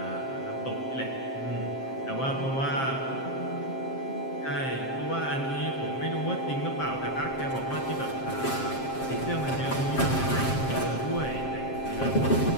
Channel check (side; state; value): right; late; 7.6 ms